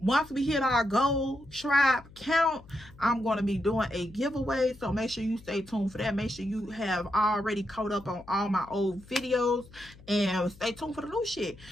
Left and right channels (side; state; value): left; noise; hum, 22 dB below the sound